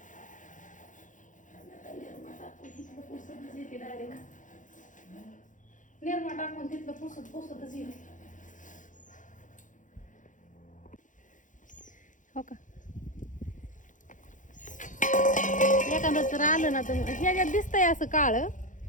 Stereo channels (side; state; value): right; late; 0.37 ms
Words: निर्मा टाकून तिथलं पुसतच येईल. हो का? एखादं तर आलं ना तर ह्याच्यात दिसतंय असं काळ,